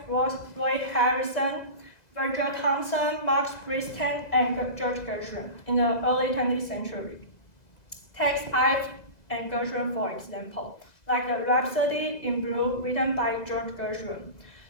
Roy Harrison, Virgil Thomson, Max Briston, and George Gershwin in the early 20th century. Take Ives and Gershwin for example, like the Rhapsody in Blue written by George Gershwin.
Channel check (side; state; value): right; late; 2.0 ms